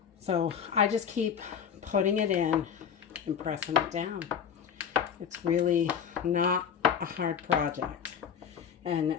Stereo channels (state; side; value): quieter; right; 7.6 dB